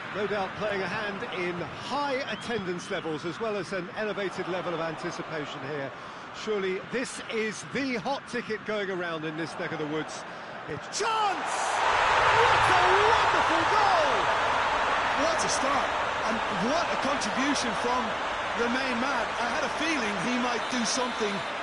No doubt playing a hand in high attendance levels as well as an elevated level of anticipation here. Surely this is the hot ticket going around in this neck of the woods. It's chance! What a wonderful goal! What a start, and what a contribution from the main man. I had a feeling he might do something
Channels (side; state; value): both; identical; correlation 1.00